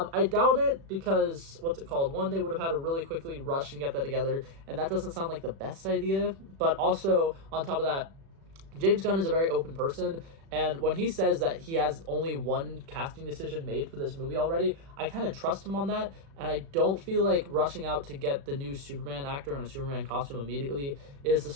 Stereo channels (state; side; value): late; left; 36 ms